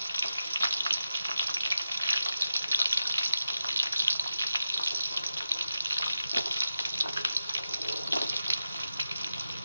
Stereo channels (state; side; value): inverted; both; correlation -0.90